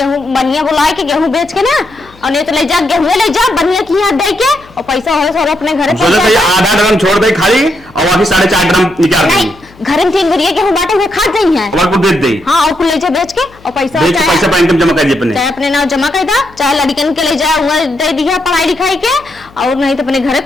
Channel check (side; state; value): left; noise; hum, 25 dB below the sound